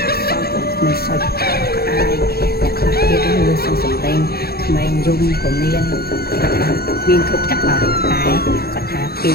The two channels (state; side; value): late; right; 0.45 ms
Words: សោយកូនក្មេងសោយក្អាយអ្នកខ្លះទៀតលឺសំឡេងក្មេងយំក៏មានគ្រប់ទាំងអស់តែគាត់ថាពី